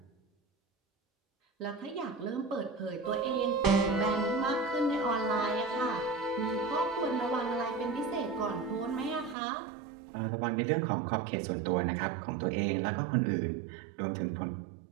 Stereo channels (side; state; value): left; drops out; at 9.3 s